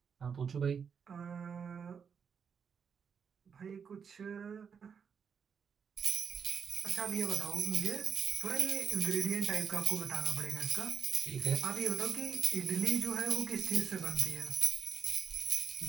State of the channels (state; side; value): quieter; left; 6.7 dB